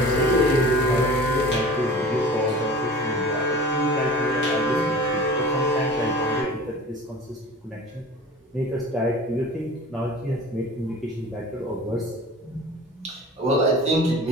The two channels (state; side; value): normal; both; correlation 0.40